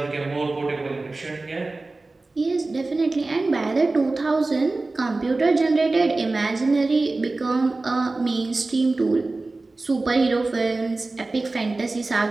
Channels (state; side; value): quieter; left; 3.3 dB